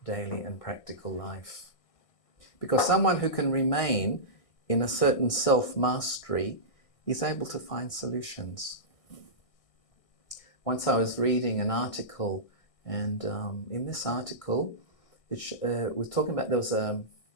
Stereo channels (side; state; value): right; late; 1.6 ms